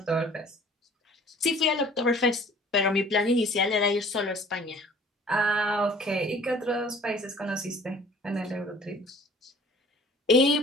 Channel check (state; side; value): normal; both; correlation 0.50